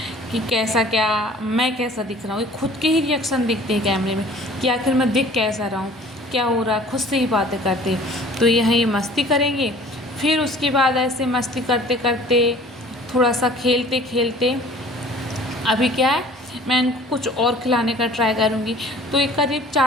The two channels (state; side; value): normal; both; correlation 0.49